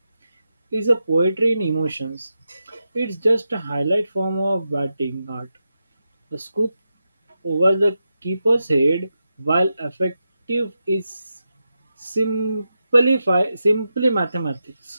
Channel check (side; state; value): both; inverted; correlation -0.88